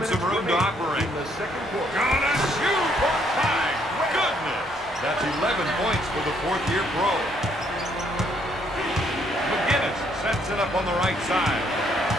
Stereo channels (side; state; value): both; normal; correlation 0.69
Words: some room to operate. In the second quarter. Gonna shoot! My goodness! That's 11 points for the 4th-year pro. McGinnis sets it up on the right side.